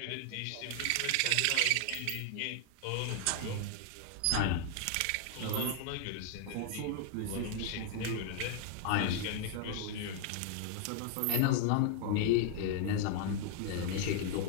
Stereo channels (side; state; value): both; different; correlation 0.00